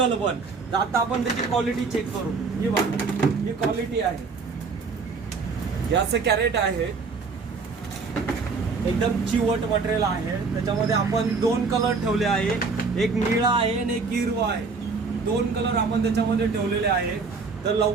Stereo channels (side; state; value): left; quieter; 4.6 dB